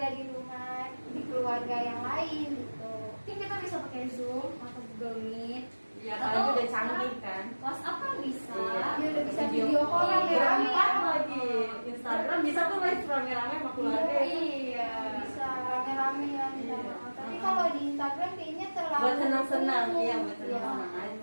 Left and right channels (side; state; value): both; inverted; correlation -1.00